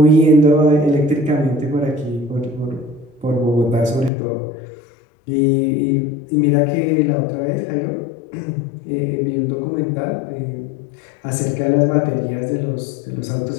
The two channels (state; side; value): drops out; right; at 4.1 s